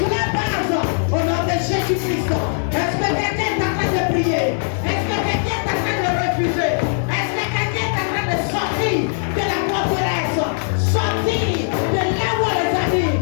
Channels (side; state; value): right; silent; digital silence